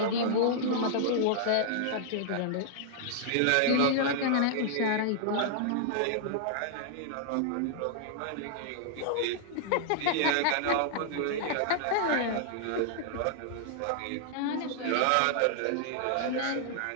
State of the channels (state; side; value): different; both; correlation -0.01